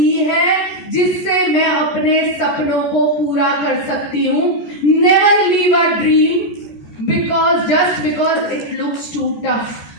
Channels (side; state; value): right; late; 14 ms